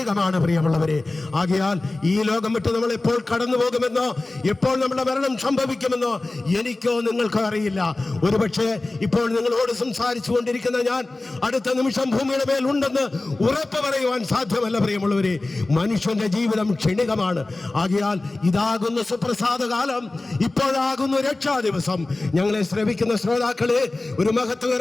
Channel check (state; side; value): quieter; right; 3.0 dB